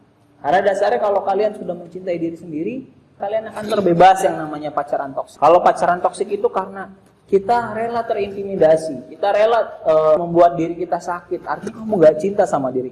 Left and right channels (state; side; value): identical; both; correlation 1.00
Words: Karena dasarnya kalau kalian sudah mencintai diri sendiri, kalian akan terbebas yang namanya pacaran toksik. Kalau pacaran toksik itu karena kita rela terintimidasi, kita rela membuat diri kita sakit, artinya kamu gak cinta sama